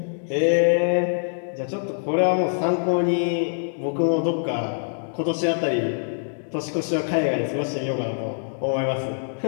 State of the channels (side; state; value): right; silent; digital silence